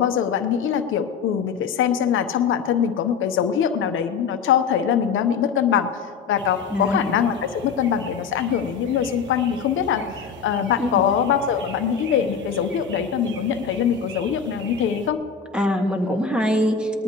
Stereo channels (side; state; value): right; quieter; 6.5 dB